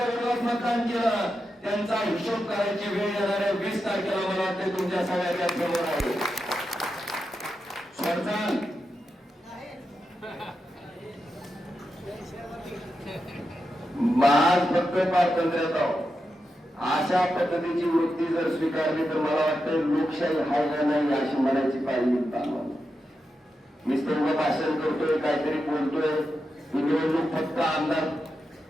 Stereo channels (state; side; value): normal; both; correlation 0.88